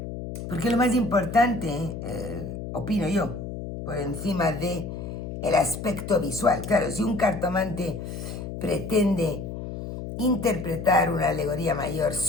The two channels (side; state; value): left; noise; hum, 7 dB below the sound